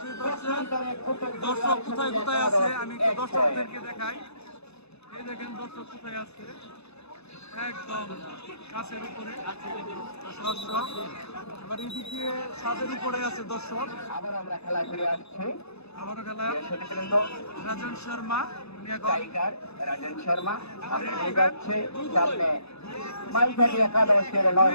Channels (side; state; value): right; late; 0.79 ms